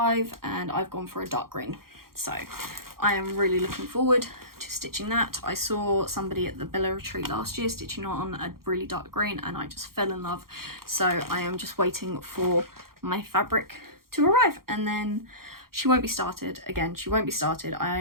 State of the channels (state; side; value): late; left; 0.93 ms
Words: and I've gone for a dark green. So I am really looking forward to stitching that. I saw somebody at the Bella Retreat last year stitching on a really dark green, and I just fell in love. So I am just waiting for my fabric to arrive, and then she won't be started. Again, she won't be started. I